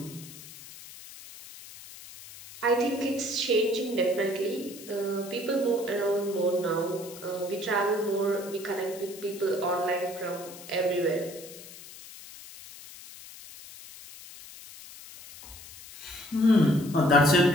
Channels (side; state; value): left; noise; hiss, 16 dB below the sound